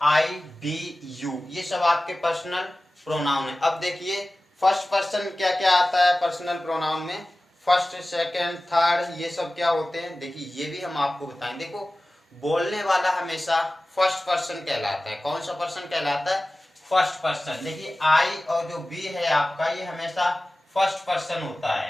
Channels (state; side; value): normal; both; correlation 0.97